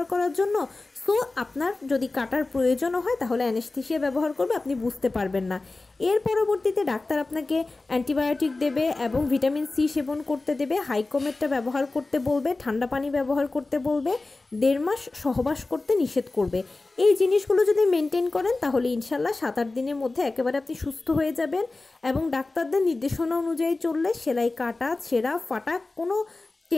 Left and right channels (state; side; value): quieter; right; 3.3 dB